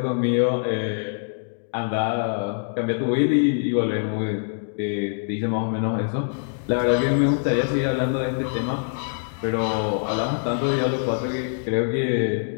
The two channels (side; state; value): right; silent; digital silence